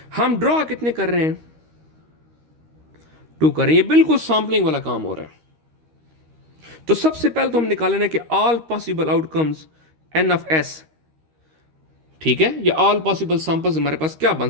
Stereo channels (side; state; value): left; late; 13 ms